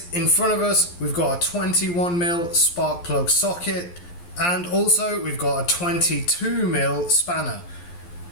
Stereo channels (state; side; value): late; right; 11 ms